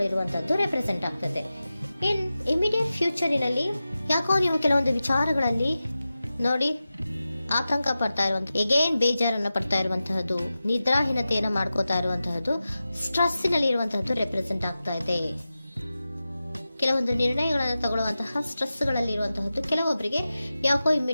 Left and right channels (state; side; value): inverted; both; correlation -0.94